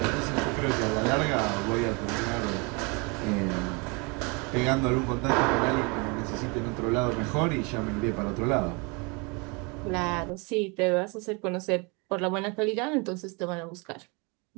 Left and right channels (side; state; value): left; quieter; 30.2 dB